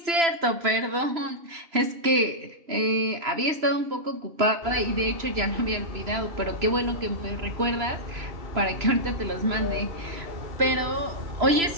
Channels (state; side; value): late; left; 3.0 ms